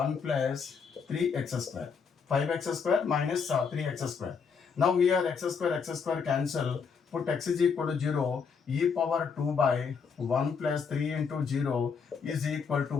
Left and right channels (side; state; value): right; quieter; 5.9 dB